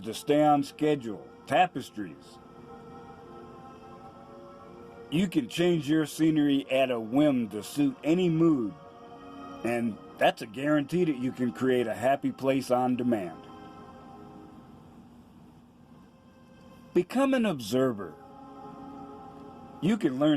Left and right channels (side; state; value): both; identical; correlation 1.00